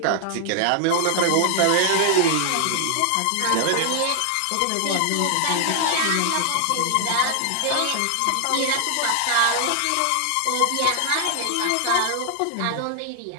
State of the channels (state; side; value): different; both; correlation 0.00